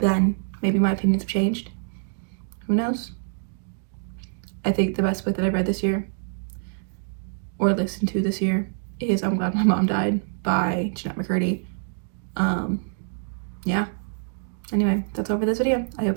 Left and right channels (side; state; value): left; silent; digital silence